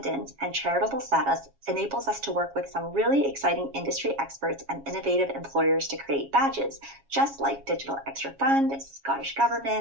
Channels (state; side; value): late; left; 7.3 ms